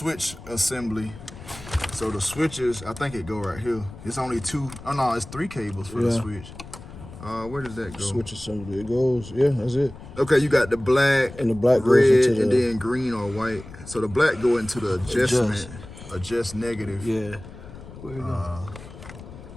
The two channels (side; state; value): left; noise; rumble, 15 dB below the sound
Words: assembly. So the switches, I think it go right here. It's only two. Oh no, it's 3 cables for the switch. Where does that go? Switch assembly. It goes. Yeah, that's it. Okay, you got the black, and the black red, goes into and then green or white. So the black go into the adjust negative. Yeah. Where you go?